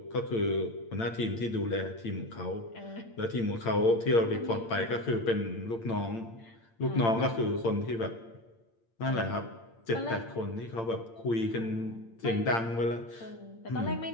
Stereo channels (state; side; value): late; right; 8.8 ms